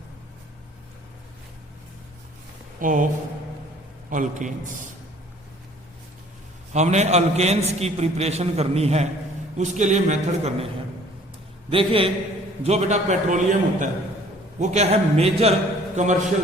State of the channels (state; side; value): normal; both; correlation 0.54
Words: of alkanes. हमने अल्केन्स की प्रिपरेशन करनी है, उसके लिए मेथड करने हैं। देखिए जो बेटा पेट्रोलियम होता है वो क्या है, मेजर